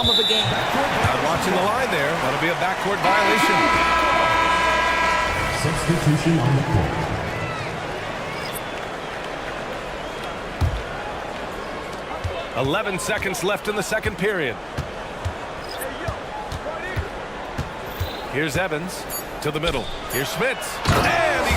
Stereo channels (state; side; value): identical; both; correlation 1.00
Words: of a game. Not watching the line there. That'll be a backcourt violation. Substitution on the court. 11 seconds left in the second period. Here's Evans to the middle. Here's Schmitz. And he